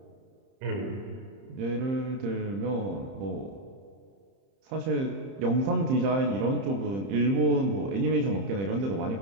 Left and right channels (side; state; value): left; late; 30 ms